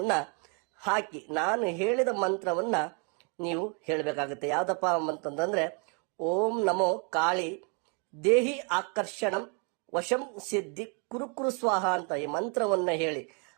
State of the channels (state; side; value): quieter; left; 36.4 dB